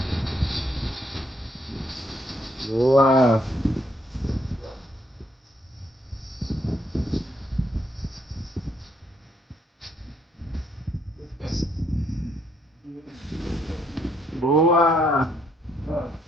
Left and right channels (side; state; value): both; normal; correlation 0.71